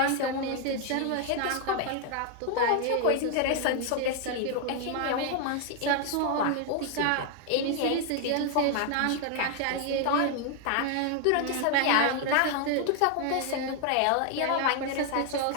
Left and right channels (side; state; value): both; different; correlation 0.00